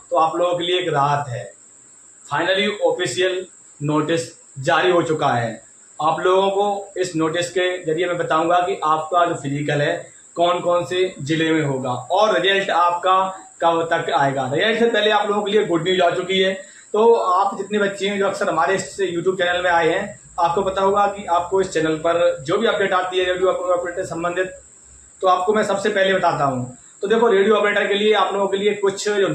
तो आप लोगों के लिए एक राहत है। फाइनली ऑफिशियल नोटिस जारी हो चुका है। आप लोगों को इस नोटिस के जरिए मैं बताऊंगा कि आपका जो फिजिकल है कौन कौन से जिले में होगा और रिजल्ट आपका कब तक आएगा। रिजल्ट से पहले आप लोगों के लिए गुड न्यूज आ चुकी है। तो आप जितने बच्चे हैं जो अक्सर हमारे इस यूट्यूब चैनल में आए हैं, आपको पता होगा कि आपको इस चैनल पर जो भी अपडेट आती है रेडियो ऑपरेटर से संबंधित, तो आपको मैं सबसे पहले बताता हूँ। तो देखो, रेडियो ऑपरेटर के लिए आप लोगों के लिए कुछ जो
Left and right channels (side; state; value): both; identical; correlation 1.00